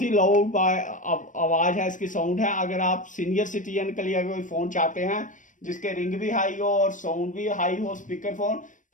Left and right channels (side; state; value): right; late; 0.37 ms